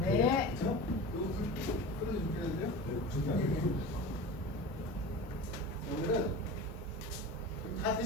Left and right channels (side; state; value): both; normal; correlation 0.32